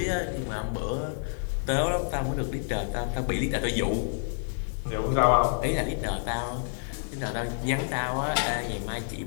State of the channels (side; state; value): right; silent; digital silence